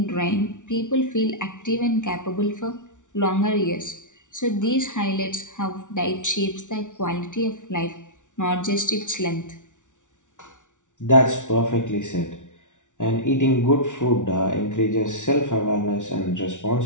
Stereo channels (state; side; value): late; right; 0.86 ms